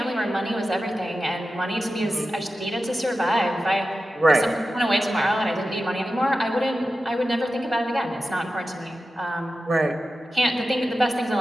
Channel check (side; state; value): both; normal; correlation 0.93